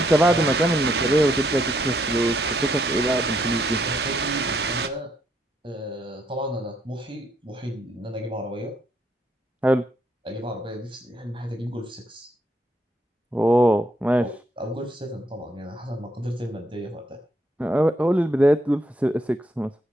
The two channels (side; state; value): both; normal; correlation 0.74